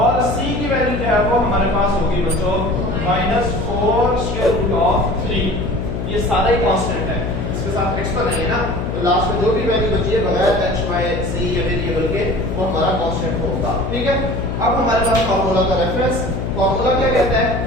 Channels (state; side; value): noise; left; hum, 4 dB below the sound